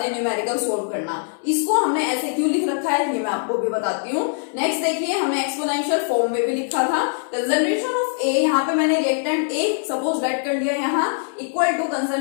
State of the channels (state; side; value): silent; right; 61 dB below the other